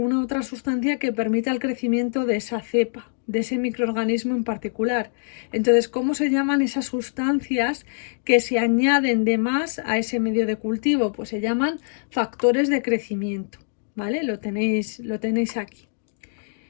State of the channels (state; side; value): silent; right; digital silence